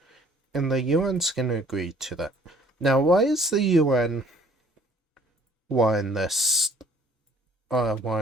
And the UN's gonna agree to that. Now, why is the UN wanting this,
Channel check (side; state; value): both; normal; correlation 0.57